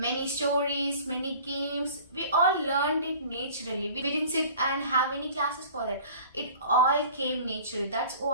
stories, many games, we all learned it naturally. We didn't sit and have any classes for that. It all came naturally. That's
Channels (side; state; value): both; inverted; correlation -0.45